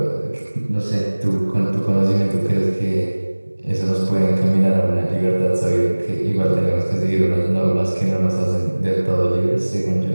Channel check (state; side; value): inverted; both; correlation -1.00